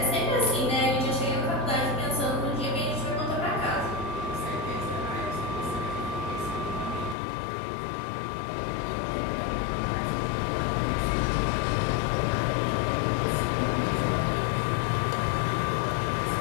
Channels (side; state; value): right; drops out; at 7.2 s